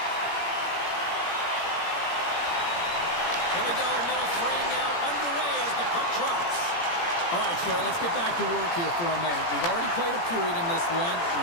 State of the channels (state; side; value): late; right; 17 ms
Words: Here we go, middle frame now underway as the puck drops. All right, Cheryl, let's get back to work here for a moment. We've already played a period in this one.